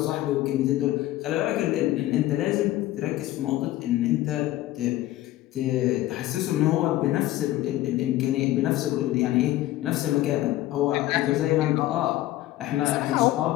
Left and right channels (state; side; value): quieter; right; 15.5 dB